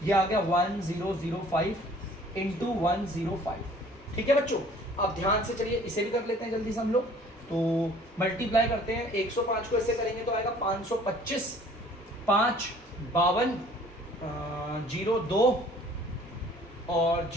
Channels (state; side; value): normal; both; correlation 0.53